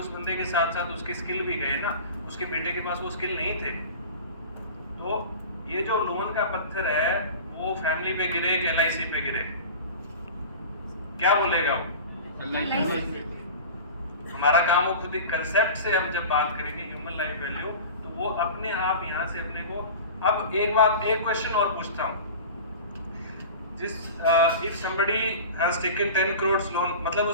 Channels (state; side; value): inverted; both; correlation -0.35